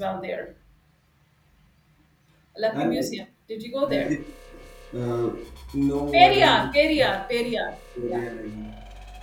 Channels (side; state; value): both; identical; correlation 1.00